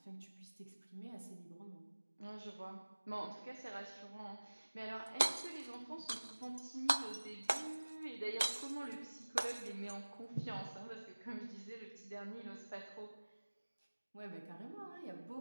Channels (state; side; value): inverted; both; correlation -1.00